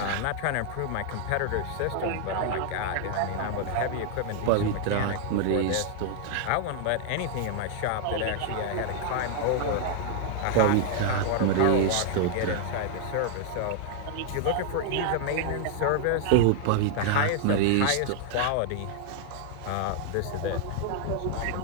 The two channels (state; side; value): different; both; correlation 0.00